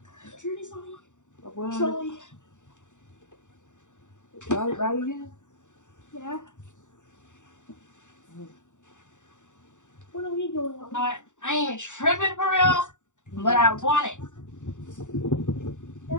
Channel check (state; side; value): late; right; 0.85 ms